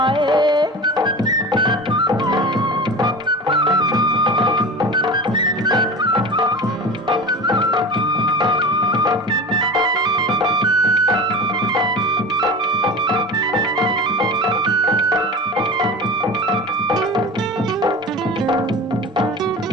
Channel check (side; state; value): both; normal; correlation 0.32